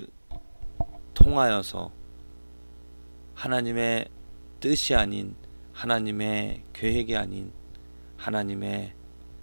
통하여서 하나님의 뜻이 아닌, 하나님의 계획이 아닌, 하나님의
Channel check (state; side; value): inverted; both; correlation -1.00